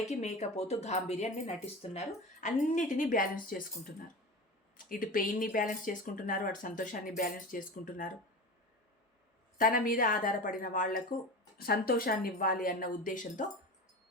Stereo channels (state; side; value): normal; both; correlation 0.29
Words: మేకపోతూ గాంభీర్యాన్ని నటిస్తున్నారు, అన్నిటినీ బ్యాలెన్స్ చేసుకుంటున్నారు. ఇటు పెయిన్ని బ్యాలెన్స్ చేసుకుంటున్నారు, అటు సంతోషాన్ని బ్యాలెన్స్ చేసుకుంటున్నారు. తన మీద ఆధారపడిన వాళ్లకు సంతోషాన్ని ఇవ్వాలి అన్న ఉద్దేశంతో